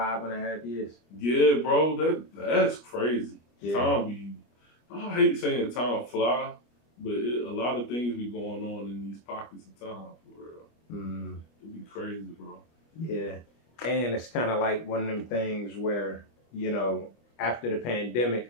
years. Yeah, bro, that's crazy. Yeah. I hate saying time fly, but a lot of things be going on in these pockets of time, for real. It'd be crazy, bro. Yeah. And it's kind of like one of them things where, after the pandemic,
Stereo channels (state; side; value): late; right; 25 ms